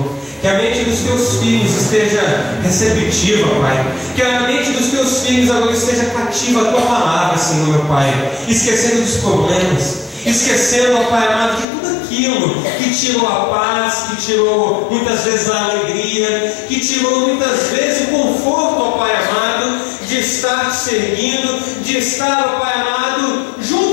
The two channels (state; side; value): drops out; right; at 11.7 s